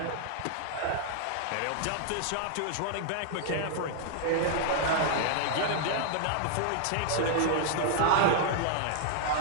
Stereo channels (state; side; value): different; both; correlation 0.00